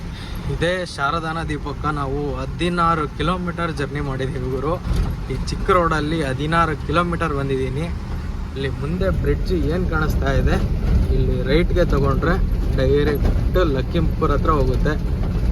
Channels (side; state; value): both; identical; correlation 1.00